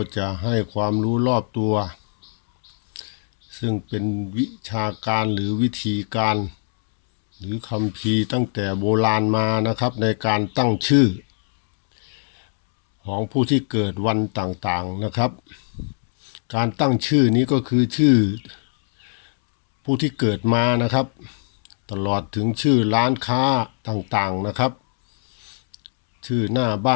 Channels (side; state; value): right; silent; 65 dB below the other